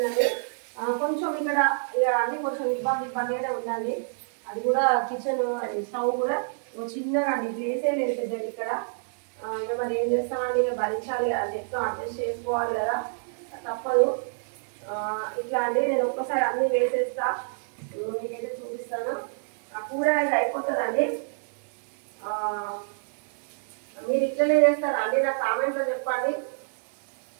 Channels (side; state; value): left; silent; digital silence